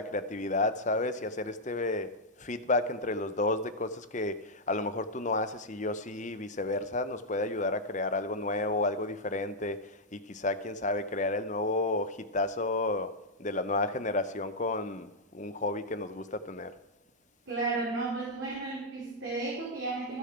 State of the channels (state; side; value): normal; both; correlation -0.04